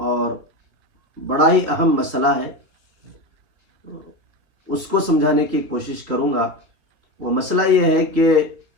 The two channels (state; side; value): late; left; 3.6 ms